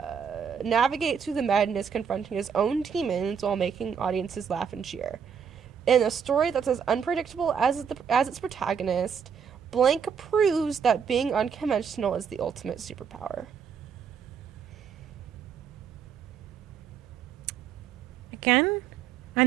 navigates through the madness, confronting his own demons while making audiences laugh and cheer. In a story that's as unpredictable as its protagonist, Blank proves that being unconventional is the ultimate superpower. Again,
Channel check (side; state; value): left; quieter; 7.1 dB